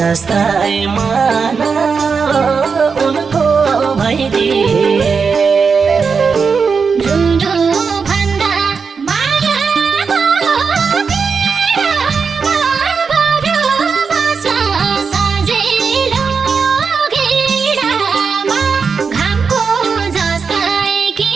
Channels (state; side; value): quieter; left; 5.5 dB